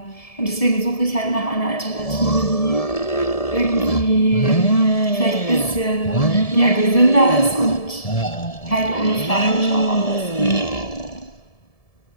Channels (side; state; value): right; late; 1.7 ms